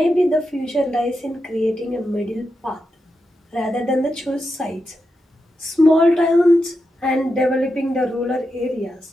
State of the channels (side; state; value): both; normal; correlation 0.87